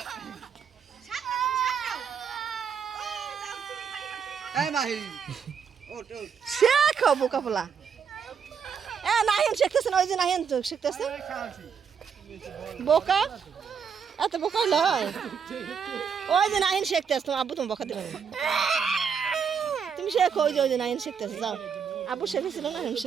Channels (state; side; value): quieter; left; 6.8 dB